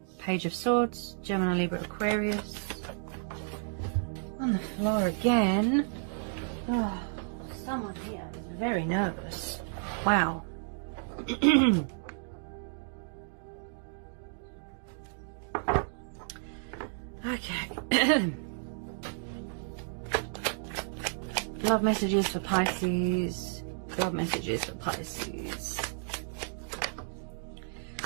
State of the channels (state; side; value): silent; left; digital silence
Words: Page of Swords. Gemini, Libra, Aquarius. On the floor again. Oh, someone here is very nervous. Wow. Okay. Love messages for Pisces. Love messages for Pisces.